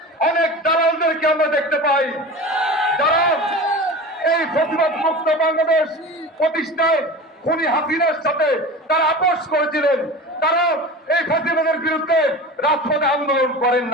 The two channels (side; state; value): both; normal; correlation 0.33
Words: অনেক দালালদেরকে আমরা দেখতে পাই, যারা এই ফ্যাসিবাদ মুক্ত বাংলাদেশ প্রতিষ্ঠায় খুনি হাসিনার সাথে তারা আপোষ করেছিলেন। তারা এই ফ্যাসিবাদের বিরুদ্ধে রাজপথে আন্দোলন করেন